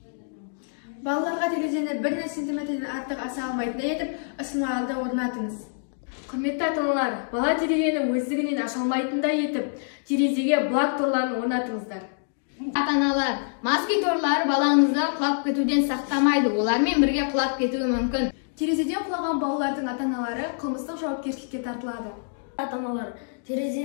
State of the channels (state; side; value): silent; right; digital silence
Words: Балаларға терезені 1 сантиметрден артық аса алмайтындай етіп, ысырмаларды орнатыңыз. Құрметті ата-аналар, бала терезені өздігінен аша алмайтындай етіп, терезеге блок торларын орнатыңыздар. Ата-аналар, москит торлары балаңызды құлап кетуден сақтамайды, олармен бірге құлап кетуі мүмкін. Терезеден құлаған балалардың ата-аналары қылмыстық жауапкершілікке тартылады. Ата-аналар,